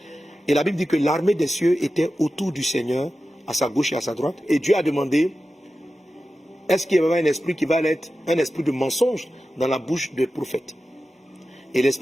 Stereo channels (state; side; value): normal; both; correlation 0.93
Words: Et la Bible dit que l'armée des cieux était autour du Seigneur, à sa gauche et à sa droite. Et Dieu a demandé, est-ce qu'il y avait un esprit qui va être un esprit de mensonge dans la bouche des prophètes? Et